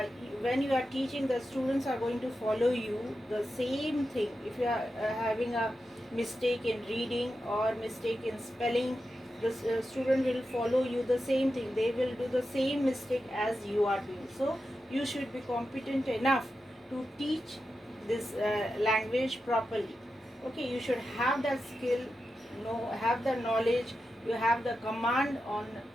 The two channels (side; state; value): both; normal; correlation 0.90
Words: when you are teaching, the students are going to follow you the same thing. If you are having a mistake in reading or mistake in spelling, the student will follow you the same thing. They will do the same mistake as you are doing. So you should be competent enough to teach this language properly. Okay, you should have that skill, have the knowledge, you have the command on